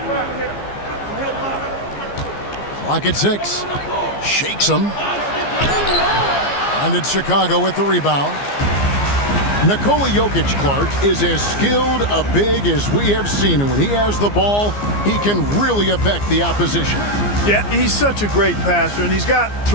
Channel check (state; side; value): late; right; 15 ms